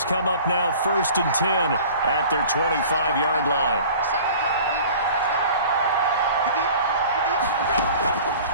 come up now 1st and 10 at their 25-yard line.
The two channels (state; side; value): inverted; both; correlation -0.44